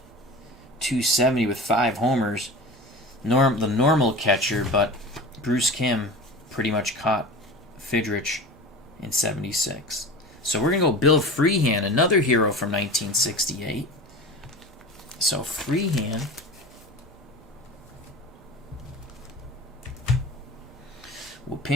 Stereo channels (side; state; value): both; normal; correlation 0.34